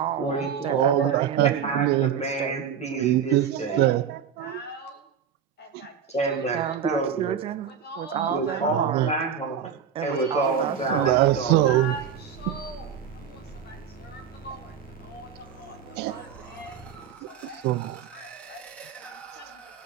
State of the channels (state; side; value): quieter; left; 8.0 dB